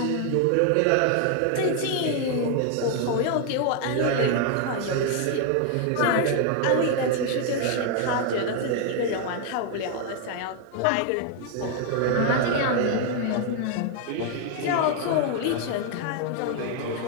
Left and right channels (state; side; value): different; both; correlation 0.00